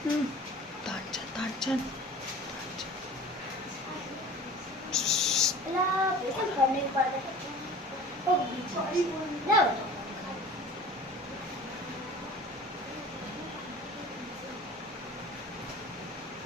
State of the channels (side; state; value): both; normal; correlation 0.42